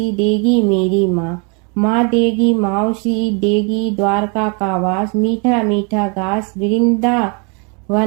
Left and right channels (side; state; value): left; quieter; 34.7 dB